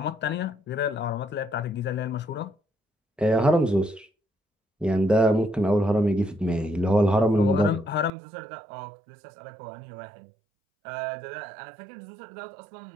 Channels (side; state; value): left; drops out; at 8.1 s